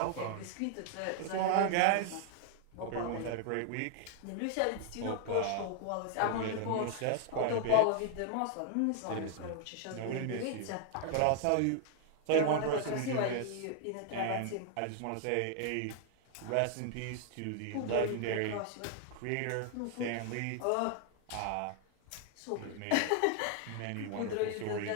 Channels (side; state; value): both; different; correlation 0.00